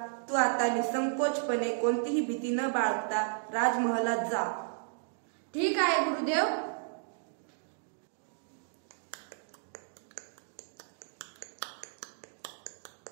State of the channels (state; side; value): silent; left; digital silence